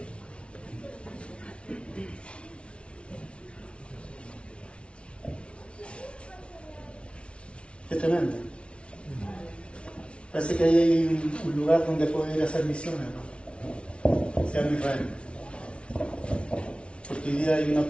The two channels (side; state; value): right; late; 0.059 ms